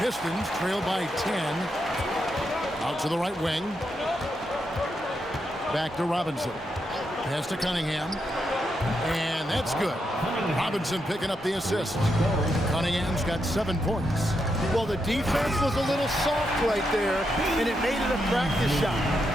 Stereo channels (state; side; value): normal; both; correlation 0.83